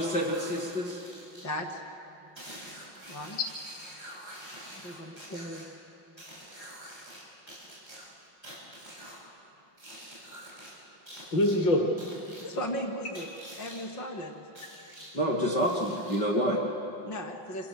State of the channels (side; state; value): right; late; 5.5 ms